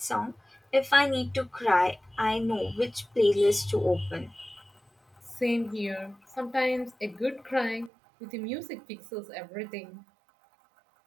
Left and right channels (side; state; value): left; drops out; at 7.9 s